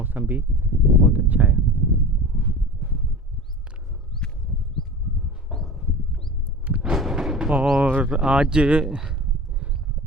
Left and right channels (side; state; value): both; normal; correlation 0.35